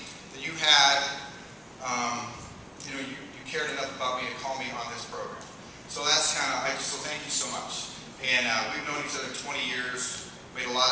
that you had, you know, you cared enough about me to call me on this program. So that's kind of, so thank you so much. And we've known each other 20 years, made a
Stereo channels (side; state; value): both; identical; correlation 1.00